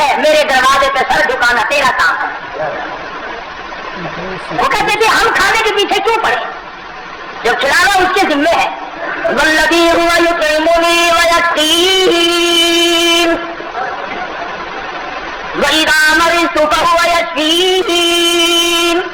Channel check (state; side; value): identical; both; correlation 1.00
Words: میرے دروازے پہ سر جھکانا تیرا کام ہے. وہ کہتے تھے ہم کھانے کے پیچھے کیوں پڑے، جو کھلانا اس کے ذمے ہے. والذی هو یطعمنی ویسقین وَإِذَا مَرِضْتُ فَهُوَ یشفین.